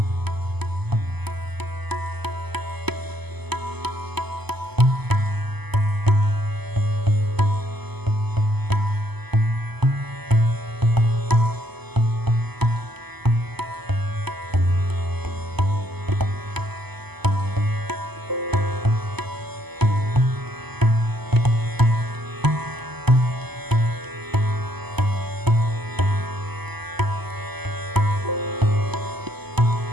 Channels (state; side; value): late; left; 0.99 ms